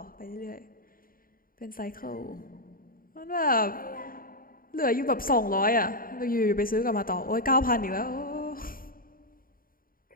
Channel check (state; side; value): late; right; 0.41 ms